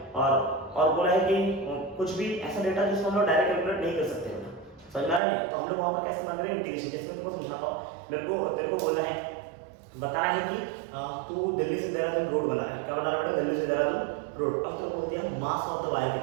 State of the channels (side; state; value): left; drops out; at 5.2 s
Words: और बोला है कि कुछ भी ऐसा डेटा जिसको हम लोग डायरेक्ट कैलकुलेट नहीं कर सकते बेटा, समझ में आ रहा है, तो हम लोग वहां पर कैसे इस्तेमाल करेंगे, इंटीग्रेशन। जैसे मैं तुमको समझाता हूं, तेरे को बोलना है, बताना है कि तू दिल्ली से देहरादून रोड बना रहा है, क्या बना रहा है बेटा, दिल्ली से देहरादून रोड। अब तेरे को बोल दिया मास ऑफ द वायर